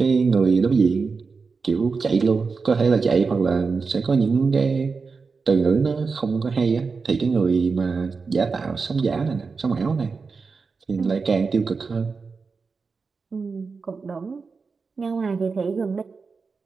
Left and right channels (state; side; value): quieter; left; 4.7 dB